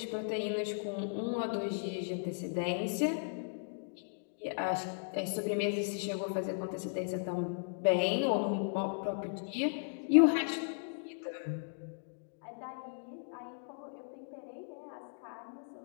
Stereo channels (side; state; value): right; silent; digital silence